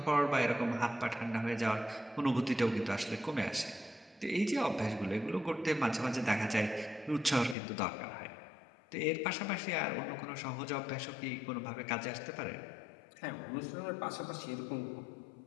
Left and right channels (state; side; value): drops out; right; at 7.6 s